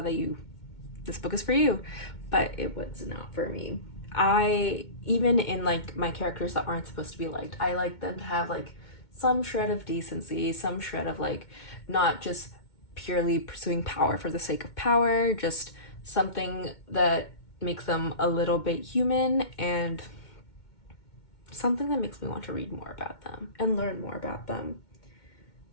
that this book is for you. But it was not for me. I even in like my characters that aren't supposed to be liked, I like them to have like some shred of decency, some shred of like not just purely pursuing power for the sake of power, just something that makes them a little bit human and something that makes me want to read more about them and learn more about them.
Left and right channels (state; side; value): late; right; 2.2 ms